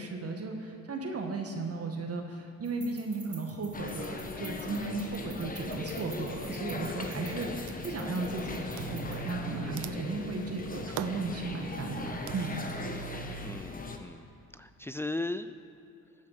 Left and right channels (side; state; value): both; normal; correlation 0.44